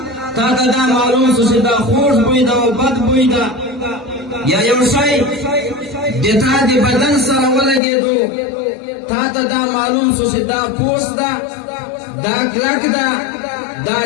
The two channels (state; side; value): drops out; right; at 7.8 s